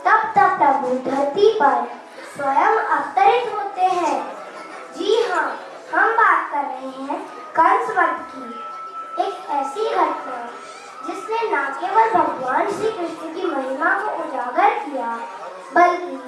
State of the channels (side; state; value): both; identical; correlation 1.00